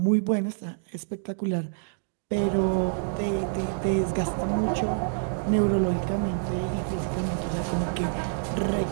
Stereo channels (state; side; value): silent; left; digital silence